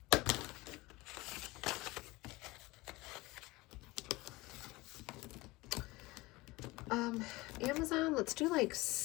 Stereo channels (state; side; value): quieter; right; 21.5 dB